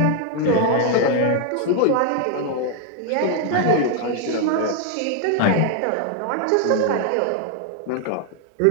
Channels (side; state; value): both; different; correlation 0.00